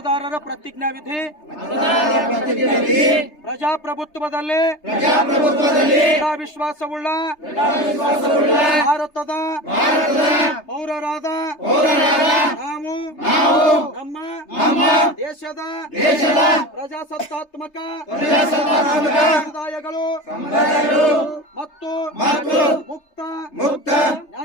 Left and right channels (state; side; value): late; right; 3.3 ms